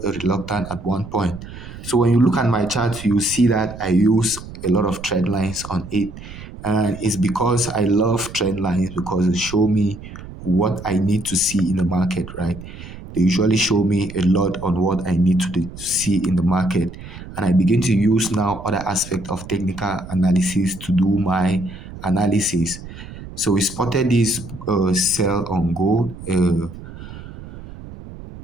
reluctant at one point. So when you look at my chart, you see that I use a lot of trend lines on it. And it's because I love trend lines because they show me what I need to see in the market, right? They usually show me a lot on what I need to see in the market. And I begin to use now other aspect of technical analysis to do my analysis. So we spotted this sell on gold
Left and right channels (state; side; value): noise; right; rumble, 14 dB below the sound